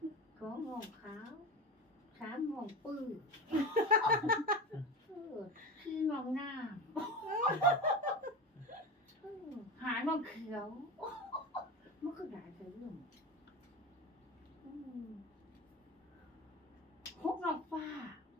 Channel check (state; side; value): normal; both; correlation 0.25